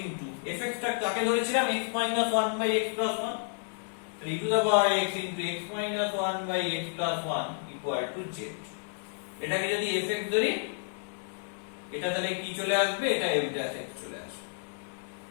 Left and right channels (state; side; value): silent; right; digital silence